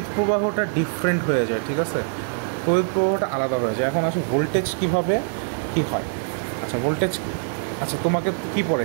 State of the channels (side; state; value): left; silent; digital silence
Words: প্রবাহটা ডিফারেন্ট হয়ে যায়, ঠিক আছে, তড়িৎ প্রবাহটা আলাদা হয়ে যায়। এখন আসে ভোল্টেজ কীভাবে কী হয়। আচ্ছা, ভোল্টেজ, আচ্ছা তোমাকে কী